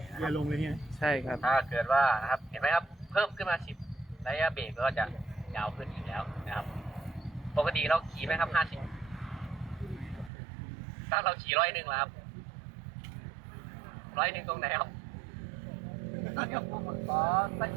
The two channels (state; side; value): drops out; left; at 10.3 s